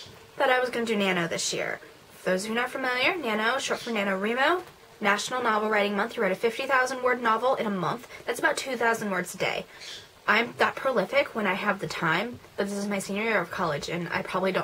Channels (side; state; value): both; identical; correlation 1.00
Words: that I was going to do NaNo this year. For those of you not familiar, NaNo, short for NaNoWriMo, National Novel Writing Month. You write a 50,000 word novel in a month. That's about 2,000 words a day. I'm that prolific when I have the time, but this is my senior year of college, and I probably